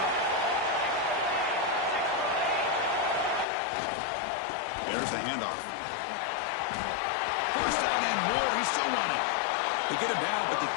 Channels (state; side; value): drops out; right; at 3.5 s